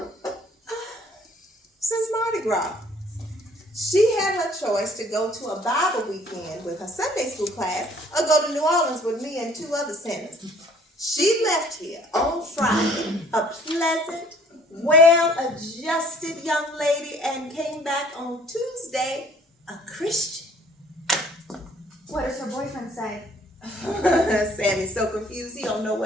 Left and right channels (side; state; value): both; normal; correlation 0.57